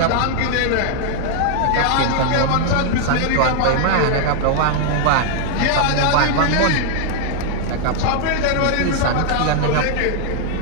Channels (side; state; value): both; different; correlation 0.00